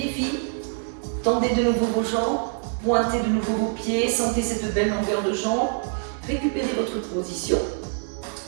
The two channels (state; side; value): silent; left; 62 dB below the other